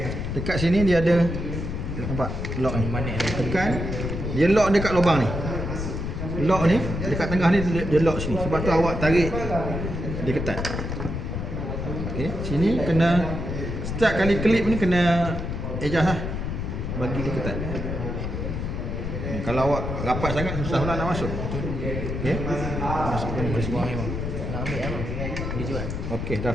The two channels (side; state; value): left; noise; rumble, 4 dB below the sound